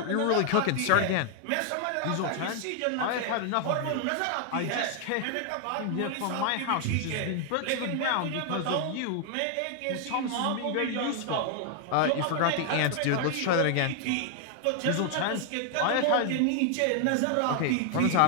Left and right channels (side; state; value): both; different; correlation 0.00